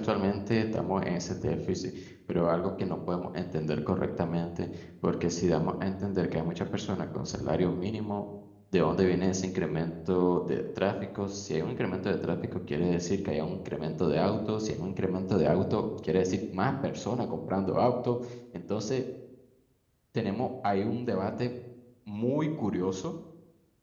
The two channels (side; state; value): both; identical; correlation 1.00